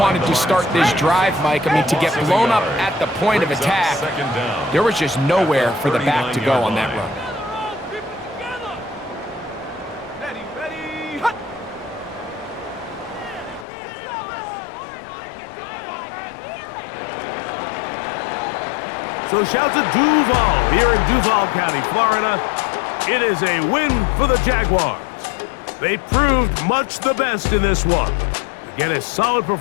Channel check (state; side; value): drops out; right; at 13.7 s